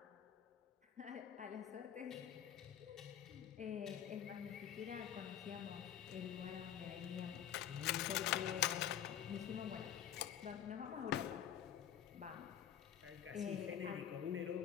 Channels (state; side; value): quieter; right; 9.8 dB